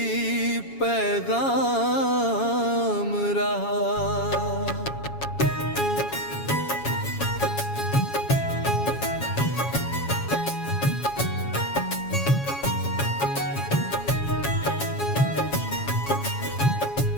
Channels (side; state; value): right; late; 7.2 ms